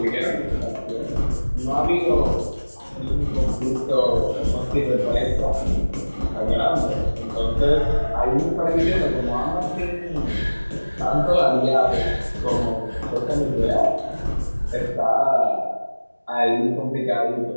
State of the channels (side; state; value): both; inverted; correlation -1.00